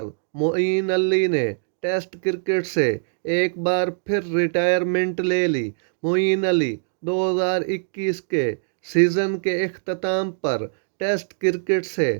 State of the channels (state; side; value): silent; left; digital silence